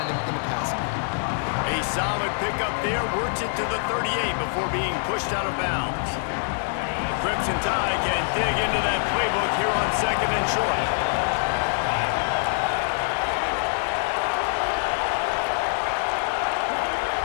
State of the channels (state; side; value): silent; right; 62 dB below the other